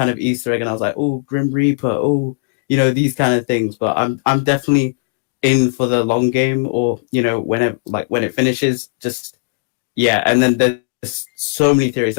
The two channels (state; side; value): quieter; right; 33.0 dB